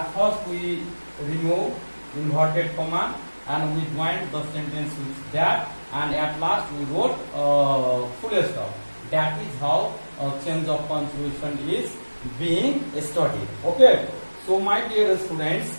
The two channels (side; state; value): both; inverted; correlation -1.00